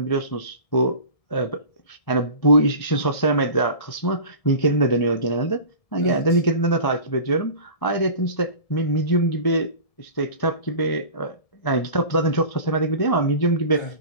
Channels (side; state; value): right; late; 1.7 ms